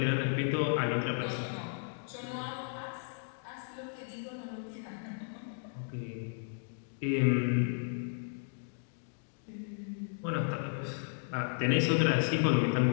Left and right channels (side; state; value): right; silent; digital silence